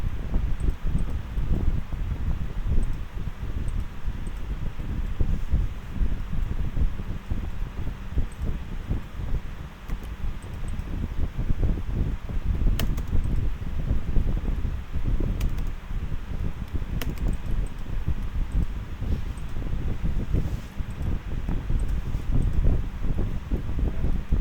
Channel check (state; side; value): identical; both; correlation 1.00